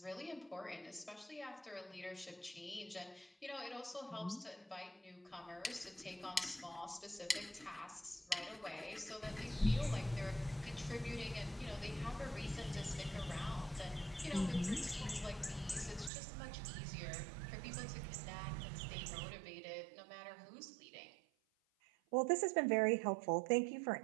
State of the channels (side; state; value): left; drops out; at 16.1 s